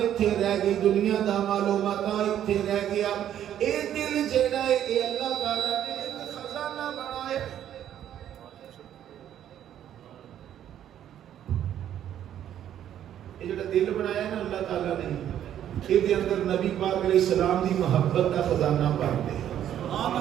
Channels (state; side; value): quieter; left; 10.7 dB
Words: ایتھے رہ گئی، دنیا دا مال و متاع ایتھے رہ گیا، اے دل جیڑا ہے اے اللہ تعالیٰ نے ایک خزانہ بنایا۔ یہ جڑا دل بنایا ہے نا اللہ تعالیٰ نے، یہ دے اندر نبی پاک علیہ السلام دی محبت دا خزانہ بھر دے،